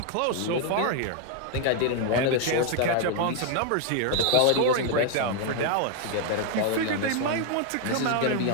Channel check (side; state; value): both; different; correlation 0.00